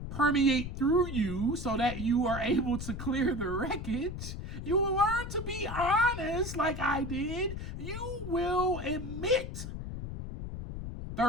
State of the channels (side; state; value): left; noise; rumble, 7 dB below the sound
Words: permeate through you so that you are able to clear the wreckage. You will learn to be honest like I did. You will admit.